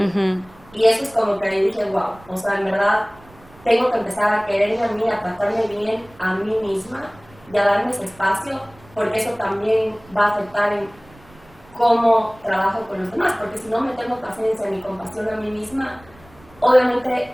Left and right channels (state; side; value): noise; right; rumble, 26 dB below the sound